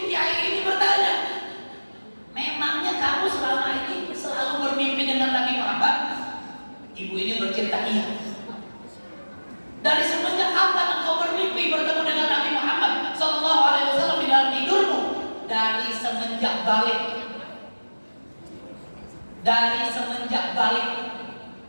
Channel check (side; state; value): both; inverted; correlation -1.00